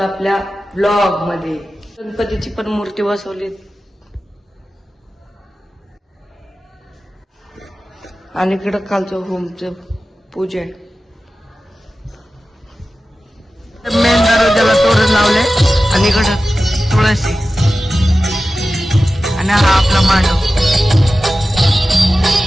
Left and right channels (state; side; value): normal; both; correlation 0.94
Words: आपल्या ब्लॉग मध्ये। गणपतीची पण मूर्ती बसवली आणि इकडं खालचं होमचं पूजा आहे। मेन दरवाजाला तोरण लावले आणि इकडं तुळशी आणि हा आपला मांडव